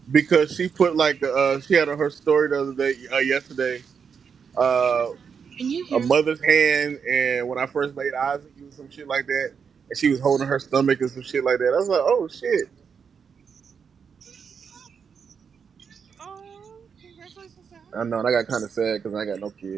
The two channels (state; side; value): quieter; left; 6.5 dB